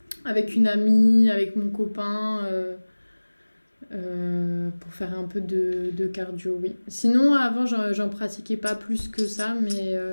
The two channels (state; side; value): inverted; both; correlation -1.00